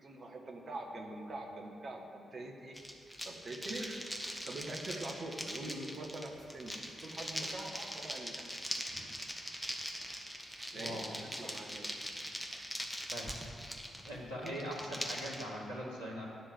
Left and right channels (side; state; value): both; normal; correlation 0.86